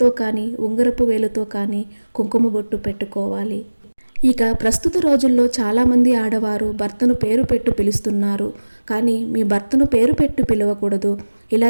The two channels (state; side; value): inverted; both; correlation -1.00